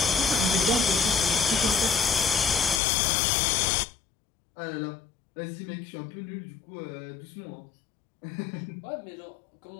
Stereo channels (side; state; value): right; drops out; at 2.8 s